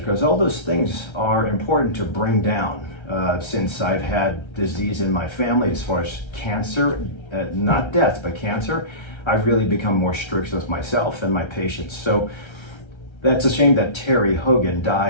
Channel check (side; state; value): right; late; 1.3 ms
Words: all those things are important to bring down. Since I've had disease in my family as far as cancer, not death, but cancer, I've really become more strict with myself and my patients. So that's a shame that Terry Hogan